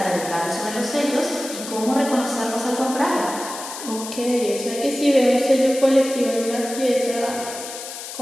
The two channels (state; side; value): noise; left; hiss, 10 dB below the sound